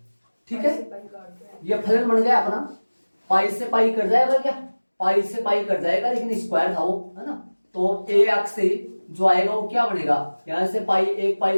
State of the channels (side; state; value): both; inverted; correlation -1.00